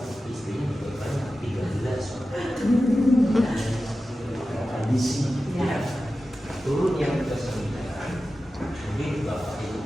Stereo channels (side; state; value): both; normal; correlation 0.94